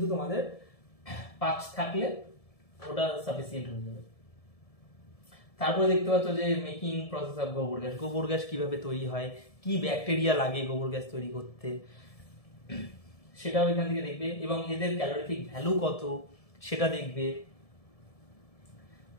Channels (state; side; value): late; right; 1.7 ms